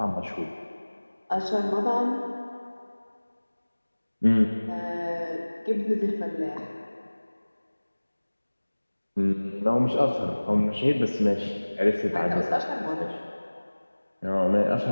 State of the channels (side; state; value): both; inverted; correlation -1.00